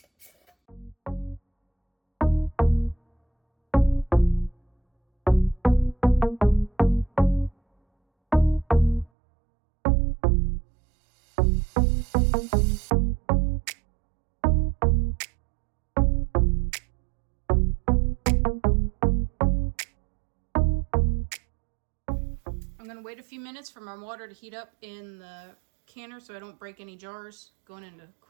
I'm gonna wait a few minutes for my water to heat up in the canner so I don't break any jars going into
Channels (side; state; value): left; drops out; at 9.1 s